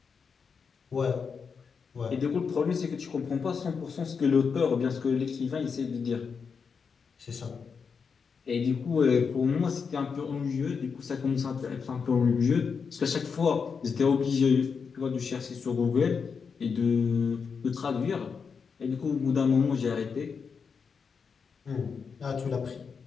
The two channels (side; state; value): right; quieter; 5.8 dB